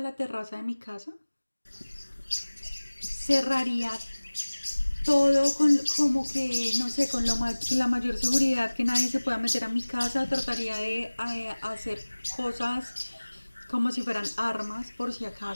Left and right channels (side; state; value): both; inverted; correlation -1.00